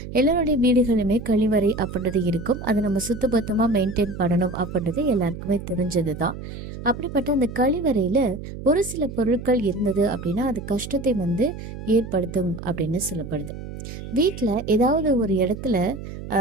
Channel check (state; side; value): noise; right; hum, 10 dB below the sound